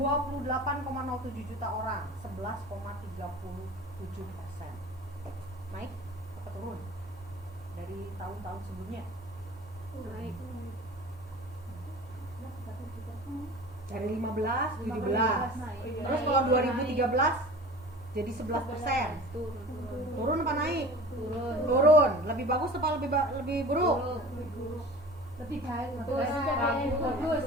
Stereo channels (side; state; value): both; normal; correlation 0.40